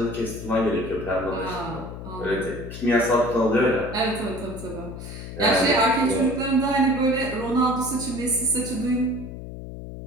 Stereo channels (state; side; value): noise; left; hum, 10 dB below the sound